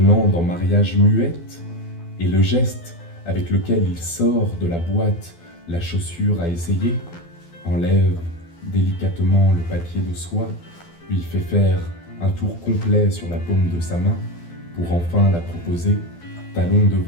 en mariage muette, et le geste avec lequel il sort de la boîte la chaussure à essayer, enlève délicatement le papier de soie, lui fait faire un tour complet sur la paume de sa main pour enfin la proposer, talon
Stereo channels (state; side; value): late; right; 12 ms